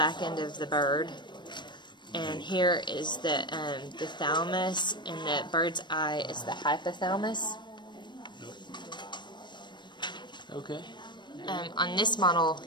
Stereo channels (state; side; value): late; right; 0.22 ms